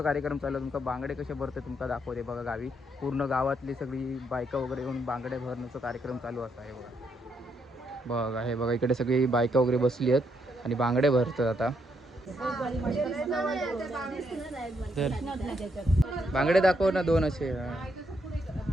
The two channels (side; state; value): both; normal; correlation 0.76